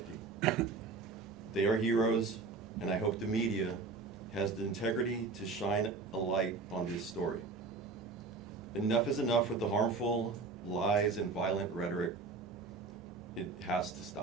They are heroes, and I hope the media has the integrity to shine a light on this story. Enough is enough with the harmful lies and violent rhetoric. It has to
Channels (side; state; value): left; quieter; 4.2 dB